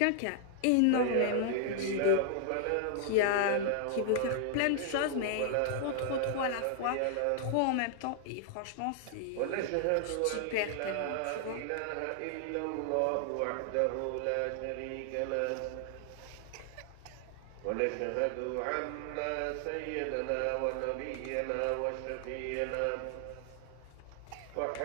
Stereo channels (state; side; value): different; both; correlation 0.00